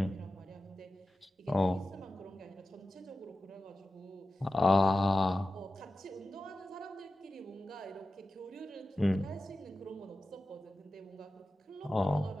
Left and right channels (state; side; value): normal; both; correlation 0.93